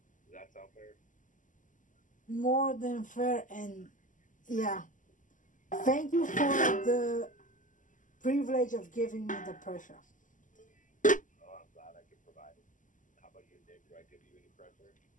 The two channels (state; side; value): late; right; 0.37 ms